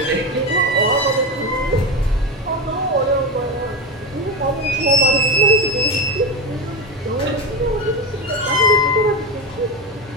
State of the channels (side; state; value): both; normal; correlation 0.17